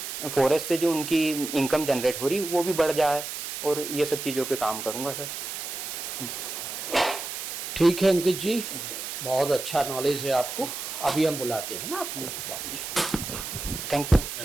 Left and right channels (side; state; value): right; noise; hiss, 6 dB below the sound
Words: फॉरेस्ट से जो उनकी इनकम जनरेट हो रही वो भी बढ़ जाए, और ये सब चीज़ों पे काम करूँगा सर। ठीक है अंकित जी, बहुत अच्छा नॉलेज है आपको। अभी हम बुलाते हैं ना आपको। Thank you